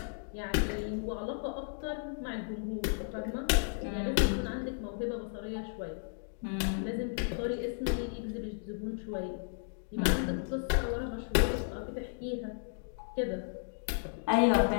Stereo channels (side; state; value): right; silent; digital silence